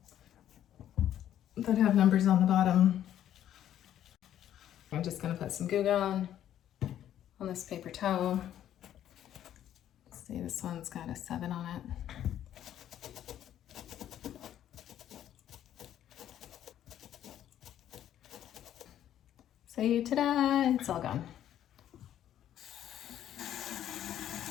that have numbers on the bottom. I'm just gonna put some Goo Gone on this paper towel. See, this one's got a 7 on it. So ta-da, it's all gone.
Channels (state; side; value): quieter; right; 11.2 dB